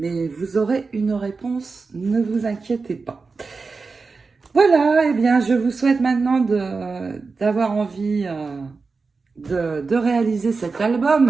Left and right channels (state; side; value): quieter; left; 4.4 dB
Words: vous aurez une réponse, ne vous inquiétez pas. Voilà, eh bien, je vous souhaite maintenant d'avoir envie de réaliser cet